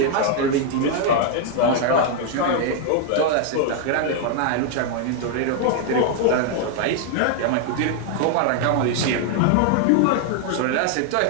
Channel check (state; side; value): different; both; correlation 0.00